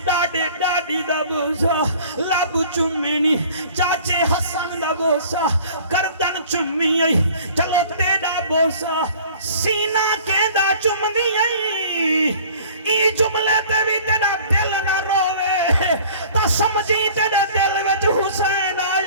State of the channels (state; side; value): inverted; both; correlation -0.49